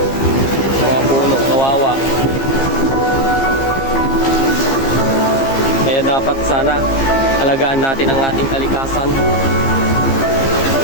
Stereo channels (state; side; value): late; right; 15 ms